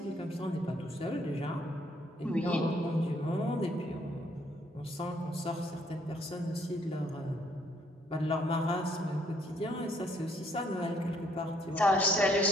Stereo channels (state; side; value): normal; both; correlation 0.67